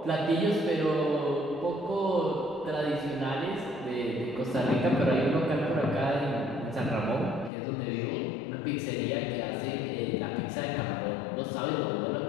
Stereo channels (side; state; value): right; drops out; at 7.5 s